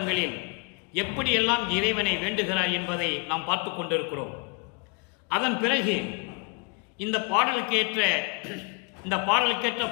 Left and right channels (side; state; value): right; quieter; 33.2 dB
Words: எப்படியெல்லாம் இறைவனை வேண்டுகிறார் என்பதை நாம் பார்த்து கொண்டிருக்கிறோம். அதன் பிறகு இந்த பாடலுக்கேற்ற